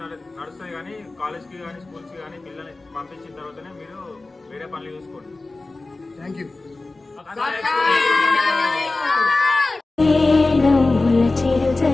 కానీ కాలేజ్కి కానీ స్కూల్స్కి కానీ పిల్లల్ని పంపించిన తర్వాతనే మీరు వేరే పనులు చూసుకోండి. Thank you. చిరు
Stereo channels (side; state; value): right; quieter; 3.3 dB